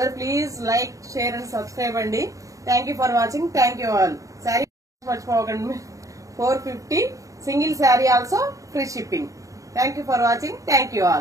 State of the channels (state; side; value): late; left; 0.16 ms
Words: please like, share and subscribe అండి. Thank you for watching. Thank you all. Sari మర్చిపోకండి. 450 single sari also free shipping. Thank you for watching. Thank you